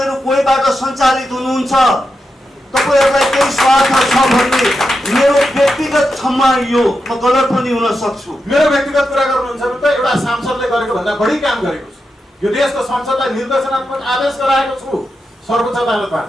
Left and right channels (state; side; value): normal; both; correlation 0.88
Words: कोहीबाट सञ्चालित हुनुहुन्छ, तपाईहरूलाई केही स्वार्थ छ भन्ने मेरो व्यक्तिगत क्षमा यो म गलत पनि हुन सक्छु। मेरो व्यक्तिगत कुरा गर्नुहुन्छ भने त एउटा सांसदले गरेको भन्दा बढी काम गरेको छु। यो देशको संसदलाई निर्देशनात्मक आदेश गराएको छु सर्वोच्च अदालतबाट।